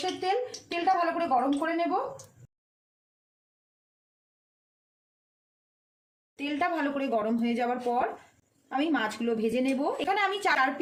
তেল। তেলটা ভালো করে গরম করে নেব। তেলটা ভালো করে গরম হয়ে যাওয়ার পর আমি মাছগুলো ভেজে নেব। এখানে আমি 4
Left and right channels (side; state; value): both; identical; correlation 1.00